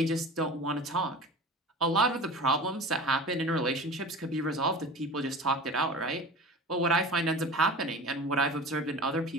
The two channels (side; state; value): both; normal; correlation 0.36